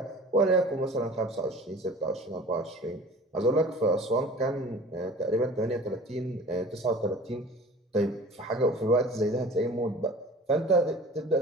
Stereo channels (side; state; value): both; normal; correlation 0.43